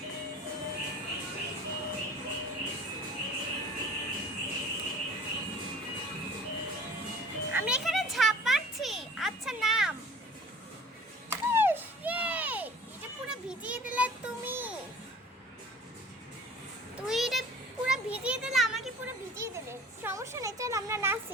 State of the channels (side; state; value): both; normal; correlation 0.46